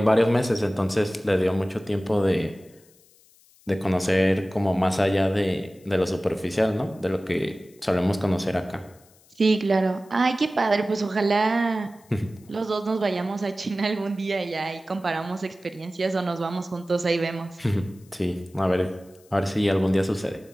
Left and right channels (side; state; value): left; noise; hiss, 29 dB below the sound